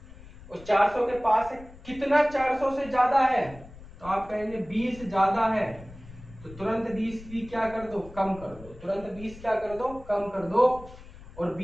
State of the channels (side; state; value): left; noise; rumble, 18 dB below the sound